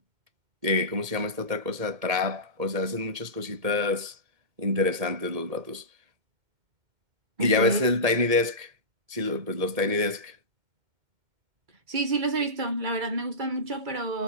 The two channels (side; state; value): left; late; 1.8 ms